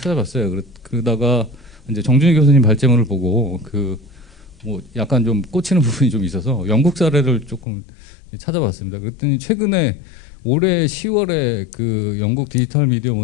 그러다가 이제 정준희 교수님 발제문을 보고 뭐 약간 좀 꽂히는 부분이 좀 있어서 영국 사례를 조금 찾아봤습니다. 그랬더니 최근에 올해 10월에 그 영국 디지털 미디어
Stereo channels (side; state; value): right; drops out; at 7.7 s